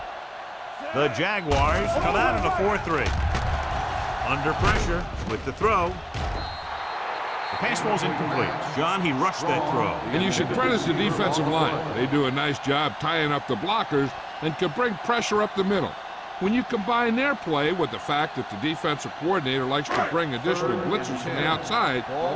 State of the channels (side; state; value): both; identical; correlation 1.00